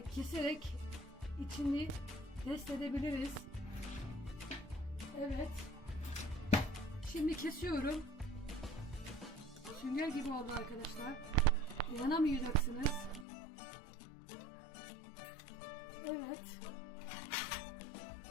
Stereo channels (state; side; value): drops out; right; at 13.2 s